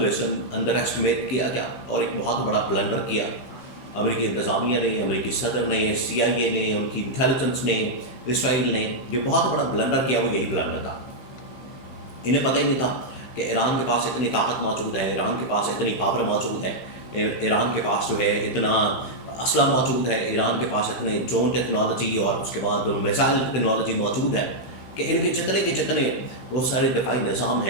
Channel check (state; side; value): late; right; 16 ms